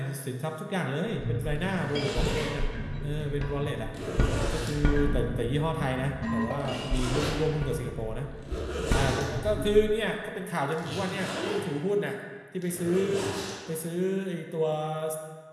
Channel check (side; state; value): both; identical; correlation 1.00